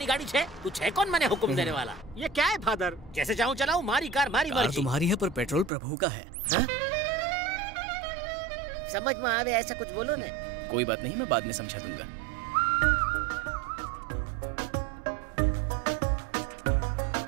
गाड़ी छे, तू छे कौन मैंने हुक्म देने वाला? ये क्या है फादर? जैसे चाहूँ चलाऊं, मारी कार मारी कार मर्जी. तुम्हारी है पर पेट्रोल प्रभु का है। समझ में आवे ऐसा कुछ बोलो ने. कोई बात नहीं, मैं बाद में समझा दूंगा।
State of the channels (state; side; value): drops out; left; at 5.7 s